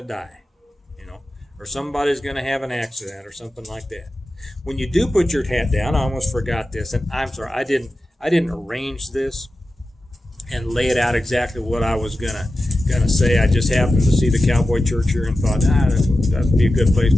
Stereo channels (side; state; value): both; normal; correlation 0.93